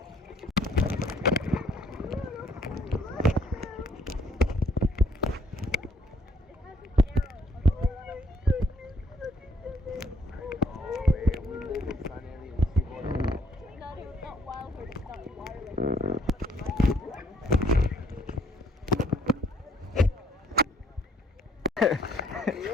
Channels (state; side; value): normal; both; correlation 0.66